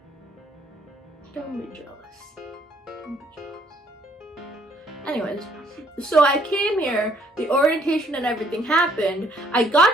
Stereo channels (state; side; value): normal; both; correlation 0.65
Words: Don't be jealous. Anyways, so I came here, the orientation and everything happened. I